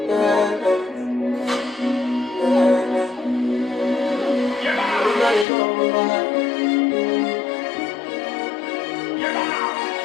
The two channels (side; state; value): right; drops out; at 5.5 s